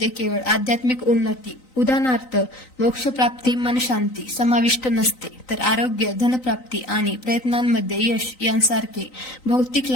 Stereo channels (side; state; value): right; late; 3.9 ms